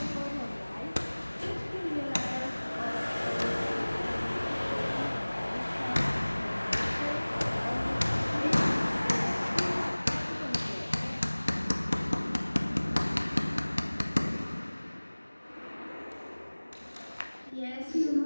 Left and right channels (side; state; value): both; inverted; correlation -1.00